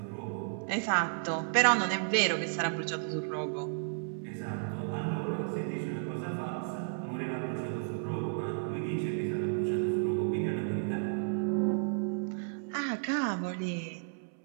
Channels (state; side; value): silent; left; 56 dB below the other